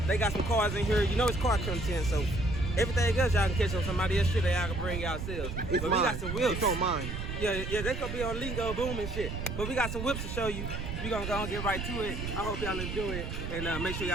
They got some cars in here. You know it's car content, so everything else y'all can catch on somebody else's shit that y'all can bring yourselves. But we got some whips. It's on mine. Yeah, they could be on Lingo Boom and shit. But we got some whips to show you. We gonna go and get right to it. I hope y'all enjoy it. And make sure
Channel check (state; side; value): noise; right; rumble, 5 dB below the sound